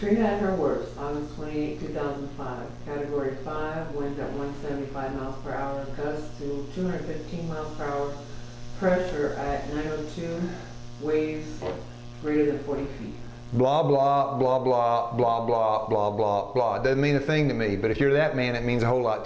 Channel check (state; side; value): identical; both; correlation 1.00